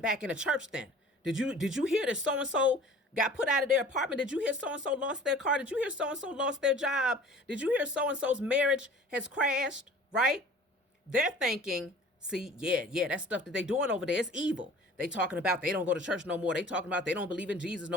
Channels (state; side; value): normal; both; correlation 0.46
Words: in the church then. Did you hear that so-and-so got put out of their apartment? Did you hear so-and-so lost their car? Did you hear so-and-so lost their job? Did you hear so-and-so's marriage has crashed, right? They're thinking, see, yeah, that stuff that they doing over there is evil. They talking about they don't go to church no more. They talking about they don't believe in Jesus